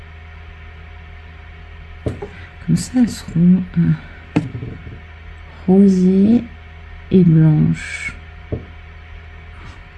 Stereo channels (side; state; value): both; identical; correlation 1.00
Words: Comme ça, elles seront rosées et blanches.